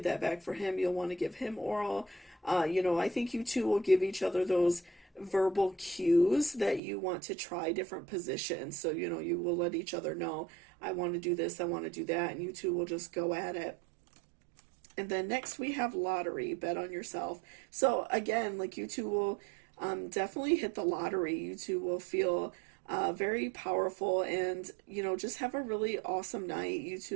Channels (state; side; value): drops out; left; at 6.8 s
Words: that back for him, you'll want to give him oral. I think you two will give each other those verbal cues that you want to try different positions. So, you will let each other know, I want to do this, I want to do that, and you two will just go at it. And then next we have lottery, bet on yourself. So again, like you two will definitely hit the lottery. You two will feel very powerful and, just have a really awesome night. You